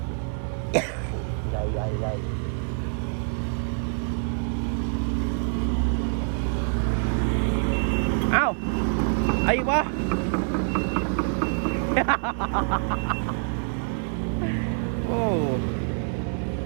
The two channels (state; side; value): silent; left; 61 dB below the other